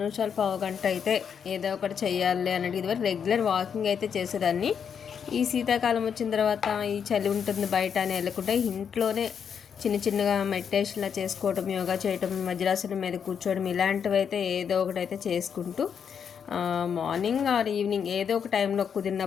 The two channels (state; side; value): quieter; right; 7.3 dB